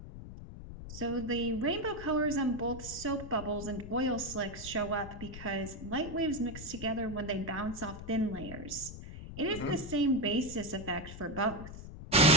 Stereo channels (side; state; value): left; noise; rumble, 11 dB below the sound